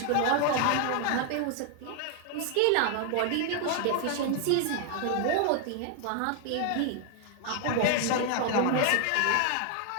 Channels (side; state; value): both; different; correlation 0.00